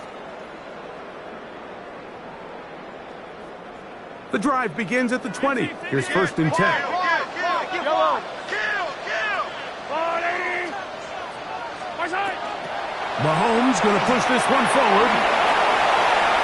The drive begins at the 20. Here's first and 10. Mahomes going to push this one forward.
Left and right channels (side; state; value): both; identical; correlation 1.00